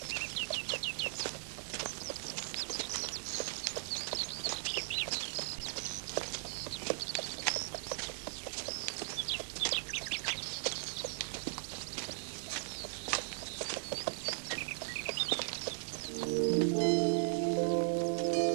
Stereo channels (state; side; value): silent; left; digital silence